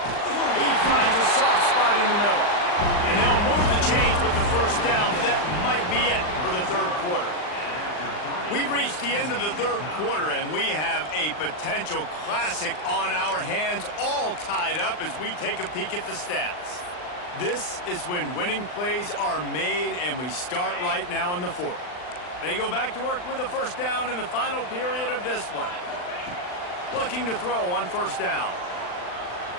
He finds a soft spot in the middle. And they'll move the chains with the first down. That might be it for the third quarter. We've reached the end of the third quarter, and we have a potential classic on our hands, all tied up as we take a peek at the stats. This is when winning plays are made, and we start right now in the fourth. They go back to work with the first down in the final period of this one. Looking to throw on first down.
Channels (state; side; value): late; right; 39 ms